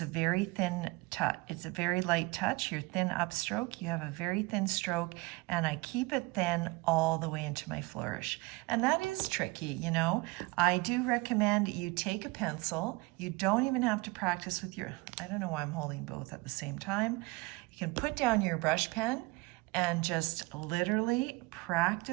a very thin touch. It's a very light touch. Your thin upstroke, you have a very thin stroke, and I keep it thin all the way into my flourish. And that is tricky, I do recommend you take a pencil. You don't even have to practice with I don't know why I'm holding both at the same time. You can put down your brush pen and just literally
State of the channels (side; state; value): left; quieter; 24.3 dB